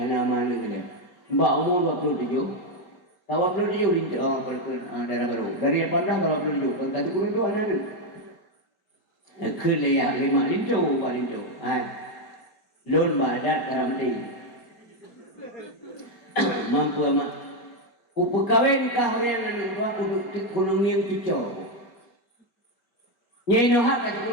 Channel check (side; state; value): right; late; 4.3 ms